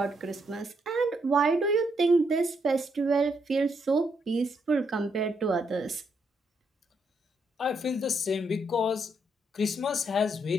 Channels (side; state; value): both; normal; correlation 0.76